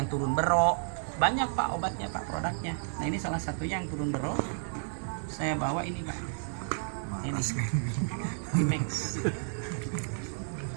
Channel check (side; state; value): left; silent; digital silence